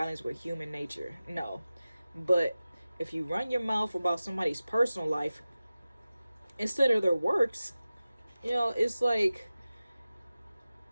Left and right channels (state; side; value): inverted; both; correlation -0.96